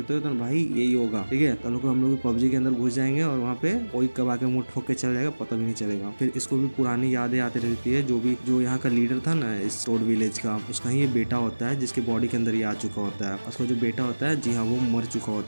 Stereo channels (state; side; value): inverted; both; correlation -1.00